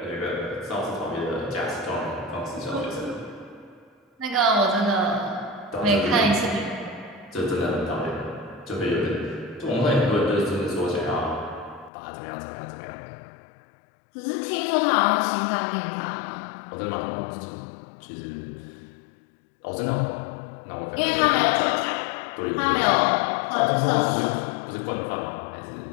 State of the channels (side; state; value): right; drops out; at 11.9 s